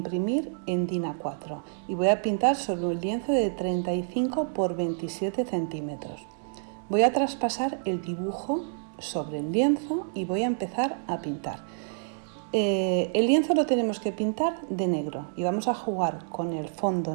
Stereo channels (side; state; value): left; silent; digital silence